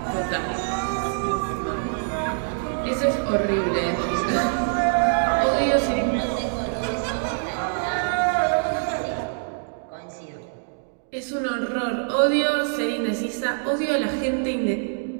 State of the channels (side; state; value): left; silent; digital silence